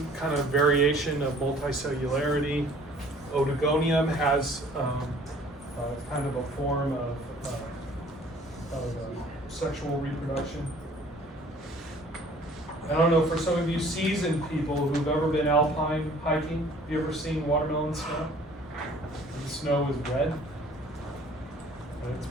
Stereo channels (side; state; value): both; normal; correlation 0.53